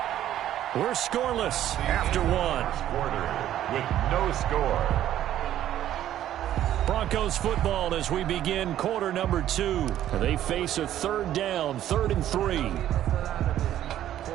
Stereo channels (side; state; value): left; quieter; 12.0 dB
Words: We're scoreless after 1. Quarter with no score. Broncos football as we begin quarter number 2. They face a 3rd down, 3rd and 3.